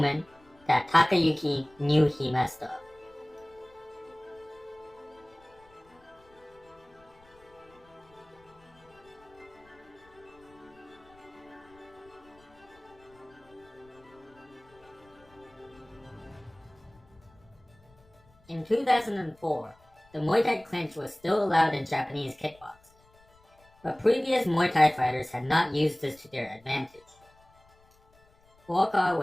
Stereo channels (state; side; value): noise; left; rumble, 29 dB below the sound